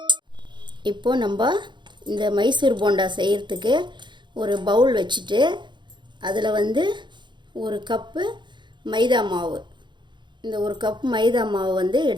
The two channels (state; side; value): late; left; 0.22 ms